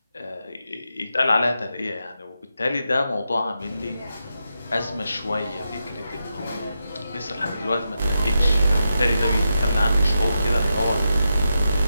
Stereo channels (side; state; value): both; inverted; correlation -0.86